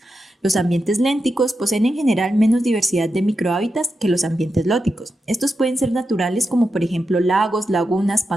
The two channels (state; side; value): normal; both; correlation 0.88